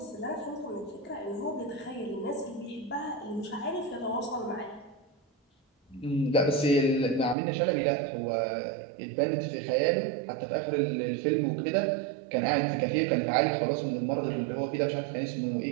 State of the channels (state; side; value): drops out; left; at 7.4 s